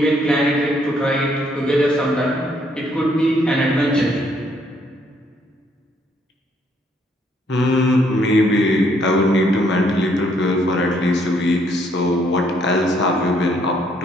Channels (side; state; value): both; normal; correlation 0.69